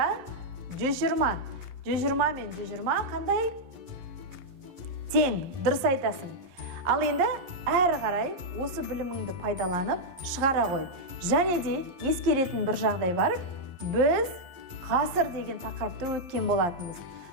120. 120 мен 120 қандай? Тең. Дұрыс айтасың. Ал енді әрі қарай осы біліміңді пайдаланып шығара қой. Және де ескеретін бір жағдай бар. Біз ғасыр деген тақырыпты өткен болатынбыз.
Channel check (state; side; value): late; left; 11 ms